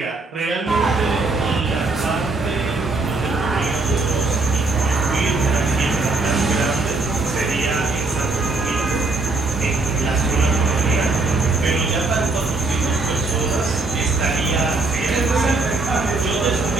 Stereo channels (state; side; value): quieter; left; 3.5 dB